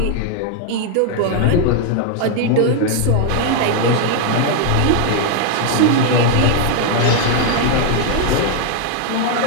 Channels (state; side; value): different; both; correlation 0.00